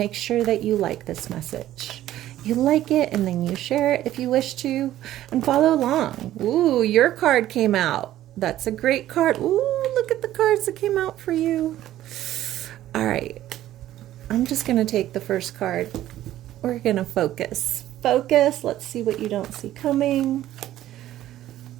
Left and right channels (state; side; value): quieter; left; 13.5 dB